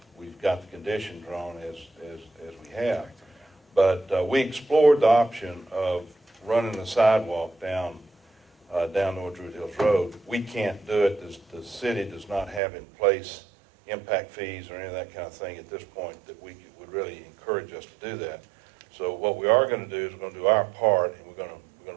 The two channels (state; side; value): drops out; left; at 12.6 s